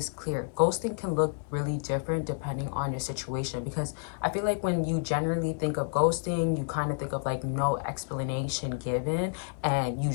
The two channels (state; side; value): silent; right; digital silence